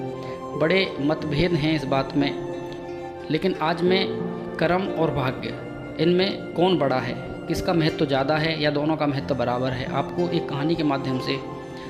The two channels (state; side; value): identical; both; correlation 1.00